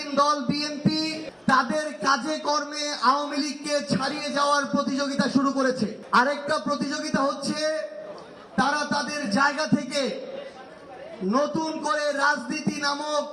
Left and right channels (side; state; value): both; identical; correlation 1.00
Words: দল বিএনপি তাদের কাজে কর্মে আওয়ামী লীগকে ছাড়িয়ে যাওয়ার প্রতিযোগিতা শুরু করেছে। আরেকটা প্রতিযোগিতা হচ্ছে তারা তাদের জায়গা থেকে নতুন করে